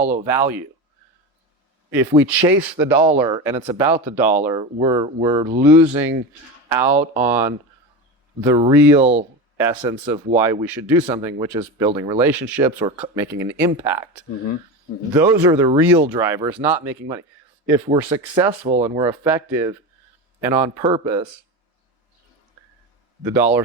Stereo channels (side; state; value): both; normal; correlation 0.23